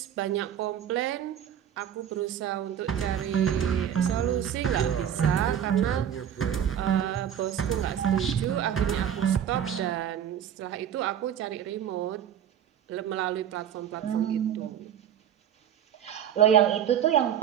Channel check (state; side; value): quieter; left; 9.5 dB